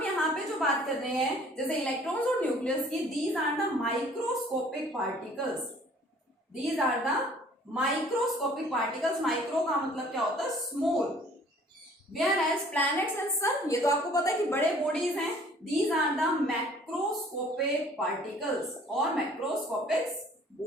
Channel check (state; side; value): normal; both; correlation 0.54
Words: यहाँ पे जो बात कर रहे हैं जैसे इलेक्ट्रॉन्स और न्यूक्लियस की, these are the microscopic particles. Micro का मतलब क्या होता है? Small. Whereas planets and sun, ये तो आपको पता है कि बड़े बॉडीज हैं. These are the macroscopic particles और मैक्रोस्कोपिक